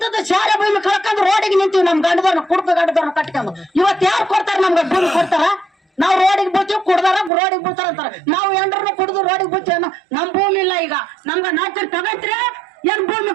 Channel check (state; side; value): drops out; left; at 7.3 s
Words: ಶಾಲೆ ಭೂಮಿ ಕಳ್ಕೊಂಡು ರೋಡಿಗೆ ನಿಂತೀವಿ. ನಮ್ ಗಂಡದವ್ರನ್ನ ಕುಡ್ಕ ಗಂಡದವ್ರನ್ನ ಕಟ್ಕೊಂಡು ಇವತ್ತು ಯಾರು ಕೊಡ್ತಾರ? ನಮ್ಗ ಭೂಮಿ ಕೊಡ್ತಾರ? ನಾವು ರೋಡಿಗೆ ಬೀಳ್ತೀವಿ, ಕುಡ್ದಾರ ರೋಡಿಗೆ ಬೀಳ್ತಾರ ಅಂತಾರ. ನಾವು ಎಂಡ್ರನ್ನ ಕುಡ್ದು ರೋಡಿಗೆ ಬೀಳ್ತೀವಿ. ನಮ್ ಭೂಮಿ ಇಲ್ಲ. ಈಗ ನಮ್ಗ ನಾಲ್ಕು ತಗಂತೀರ, ಏನ್ ಭೂಮಿ